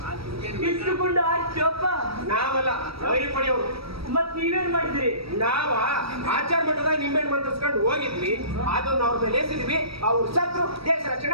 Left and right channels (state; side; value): late; left; 0.76 ms